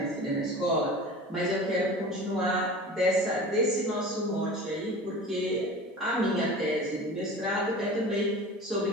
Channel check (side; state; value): both; normal; correlation 0.37